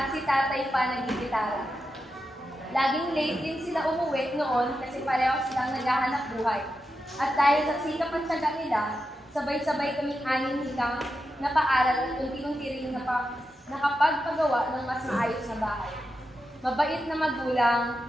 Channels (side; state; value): both; normal; correlation 0.88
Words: si tatay pa nagigitara. Laging late din sila umuwi noon kasi pareho silang naghahanap buhay. At dahil sa sikap at tiyaga nila, sabay-sabay kaming anim higang napaaral at unti-unti rin nakapagpagawa ng mas maayos na bahay. Mabait na magulang